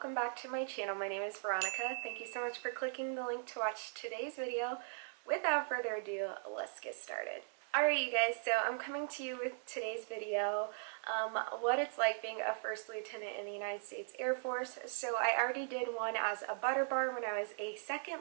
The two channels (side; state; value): left; silent; 52 dB below the other